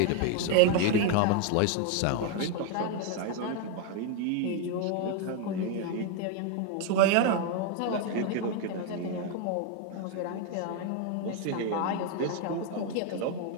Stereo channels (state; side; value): different; both; correlation 0.00